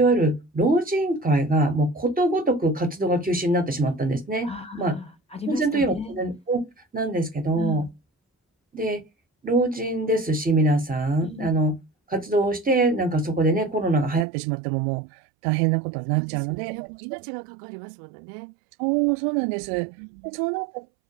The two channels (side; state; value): left; drops out; at 14.2 s